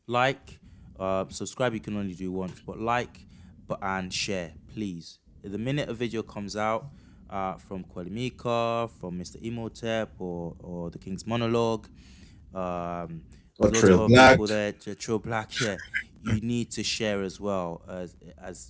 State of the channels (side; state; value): both; identical; correlation 1.00